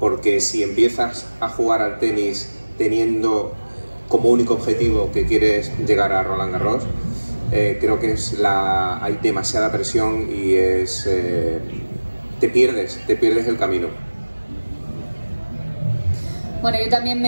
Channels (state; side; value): inverted; both; correlation -1.00